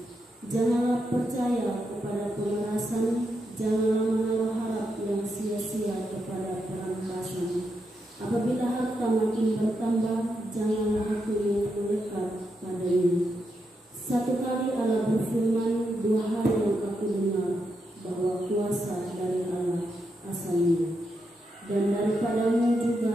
Janganlah percaya kepada pemerasan, janganlah menaruh harap yang sia-sia kepada perampasan. Apabila harta makin bertambah, janganlah hati yang melekat padanya. Satu kali Allah berfirman, dua hal yang aku dengar, bahwa kuasa dari Allah asalnya. Dan daripadamu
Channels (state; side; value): normal; both; correlation 0.84